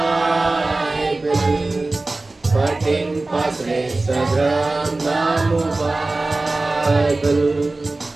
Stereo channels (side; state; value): left; quieter; 3.1 dB